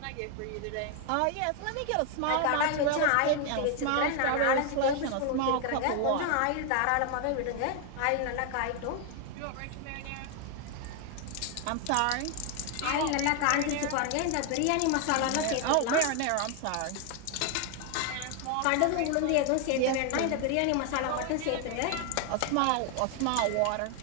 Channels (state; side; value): different; both; correlation 0.00